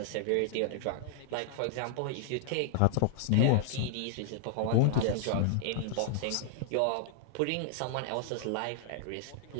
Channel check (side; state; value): both; different; correlation 0.00